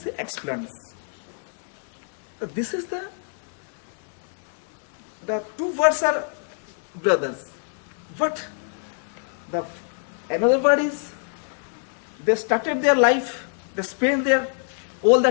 explains. This is the two words are brothers. But another word is, they started their life, they spent their all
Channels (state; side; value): silent; right; 61 dB below the other